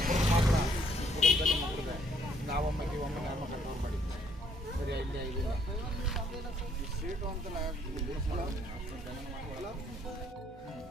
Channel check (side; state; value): both; normal; correlation 0.66